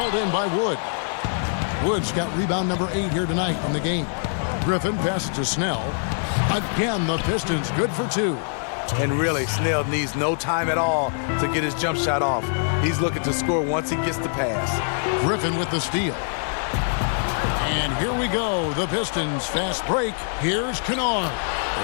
in by Wood. Wood's got rebound number 8 here tonight in the game. Griffin passes to Snell. Again, the Pistons good for 2. And really, Snell needs no time at all to get his jump shot off. He's looking to score once he gets the pass. Griffin with the steal. And here we go. The Pistons fast break. Here's Kennard.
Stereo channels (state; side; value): silent; right; digital silence